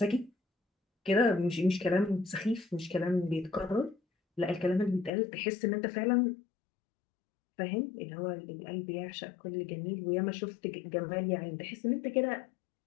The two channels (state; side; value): drops out; right; at 5.1 s